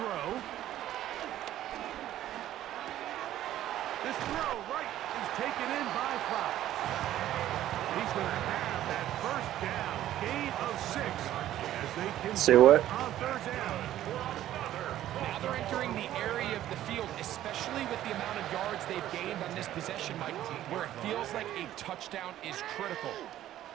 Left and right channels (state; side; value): quieter; left; 12.9 dB